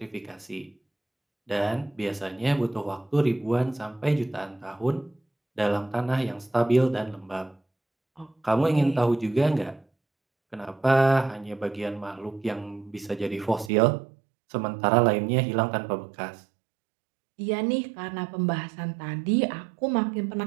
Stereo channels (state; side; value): drops out; left; at 13.7 s